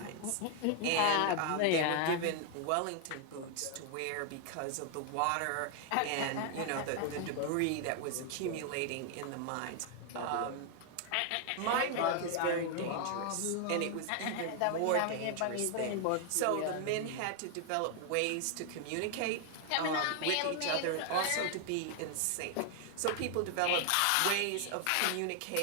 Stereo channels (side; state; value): both; different; correlation 0.00